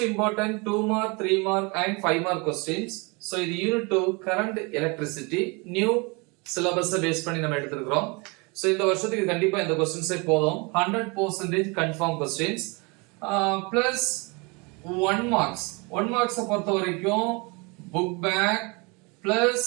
important 2 mark 3 mark and 5 mark questions. So இது unit 2 current electricity new syllabus base பண்ணி நம்ம எடுத்துக்கிறோம். So இந்த வருஷத்துக்கு கண்டிப்பா இந்த questions போதும் 100% confirm questions plus 1 marks பொறுத்த வரைக்கும் book back plus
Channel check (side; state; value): left; quieter; 29.1 dB